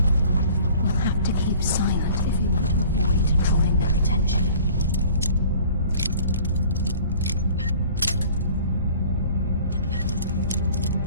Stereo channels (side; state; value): both; inverted; correlation -0.49